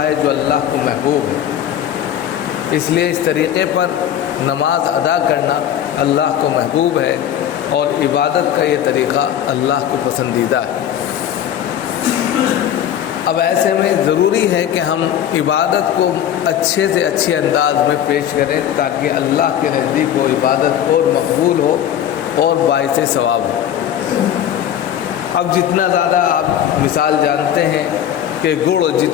جو اللہ کو محبوب ہے۔ اس لیے اس طریقے پر نماز ادا کرنا اللہ کو محبوب ہے اور عبادت کا یہ طریقہ اللہ کو پسندیدہ ہے۔ اب ایسے میں ضروری ہے کہ ہم عبادت کو اچھے سے اچھے انداز میں پیش کریں تاکہ اللہ کے نزدیک وہ عبادت اور مقبول ہو اور باعث ثواب ہو۔ اب جتنا زیادہ آپ مثال جانتے ہیں کہ گڑ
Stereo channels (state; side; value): quieter; right; 10.3 dB